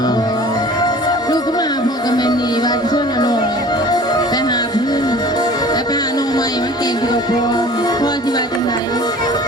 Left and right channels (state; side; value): normal; both; correlation 0.44